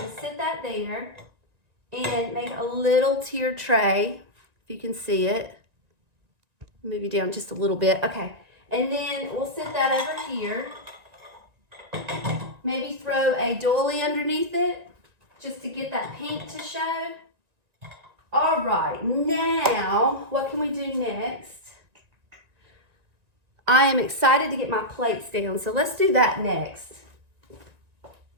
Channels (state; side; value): late; left; 1.9 ms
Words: sit that there and make a little tiered tray, if you can see it. Move you down just a little bit, okay. And then we'll sit that over here. Maybe throw a doily underneath it, just to get that pink to show. All right, now, what can we do next? I am excited to get my plates down, so let's do that next.